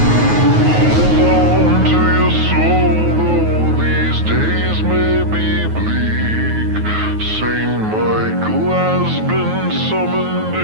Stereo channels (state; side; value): late; left; 9.4 ms